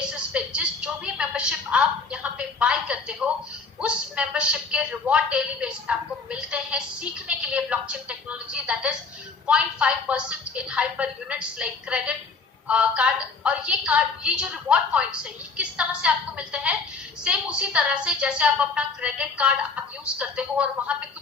पे जो भी मेंबरशिप आप यहाँ पे बाय करते हो, उस मेंबरशिप के रिवॉर्ड डेली बेसिस पे आपको मिलते हैं सीखने के लिए blockchain technology. That is 0.5% in hyper units like credit card. और ये जो रिवॉर्ड पॉइंट्स है ये किस तरह से आपको मिलते हैं, सेम उसी तरह से जैसे आप अपना क्रेडिट कार्ड आप यूज करते हो और वहां पे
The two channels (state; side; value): quieter; right; 4.5 dB